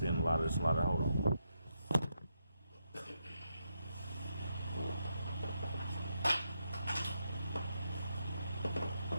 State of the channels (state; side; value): inverted; both; correlation -0.83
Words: a lot of this and a lot of that. Hold on.